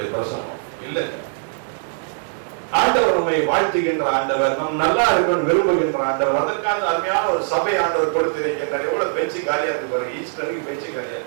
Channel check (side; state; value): left; silent; 64 dB below the other